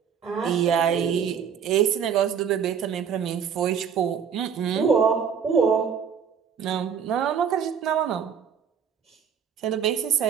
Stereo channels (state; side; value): quieter; left; 7.4 dB